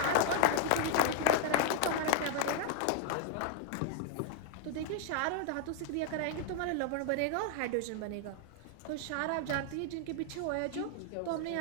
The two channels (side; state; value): both; different; correlation 0.00